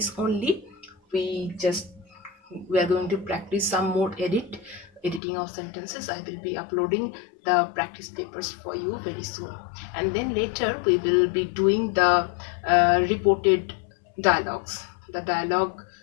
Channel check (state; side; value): drops out; right; at 5.2 s